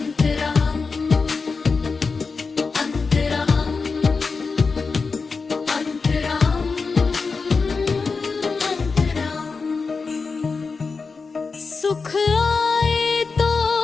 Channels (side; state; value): right; quieter; 4.6 dB